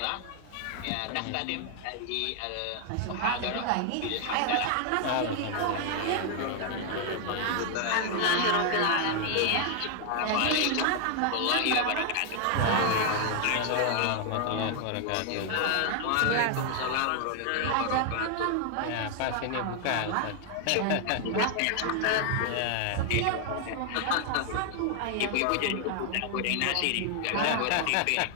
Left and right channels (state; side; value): different; both; correlation 0.00